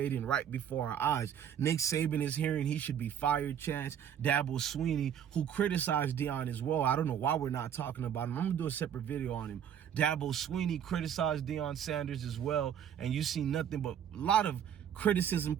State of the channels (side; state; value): left; quieter; 9.0 dB